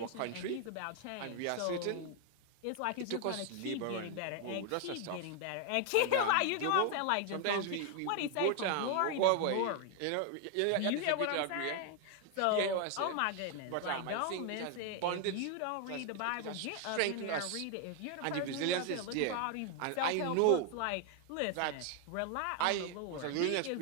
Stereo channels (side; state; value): both; different; correlation 0.00